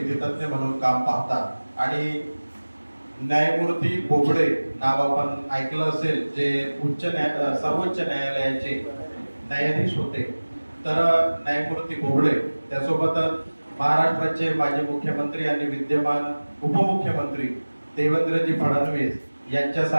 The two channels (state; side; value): inverted; both; correlation -1.00